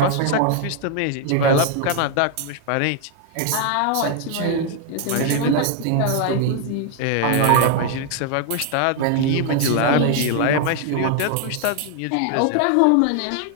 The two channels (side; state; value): both; different; correlation 0.00